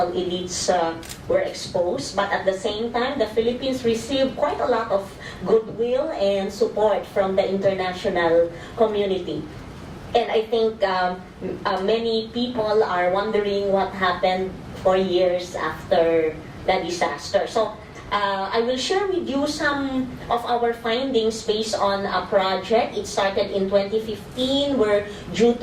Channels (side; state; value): both; identical; correlation 1.00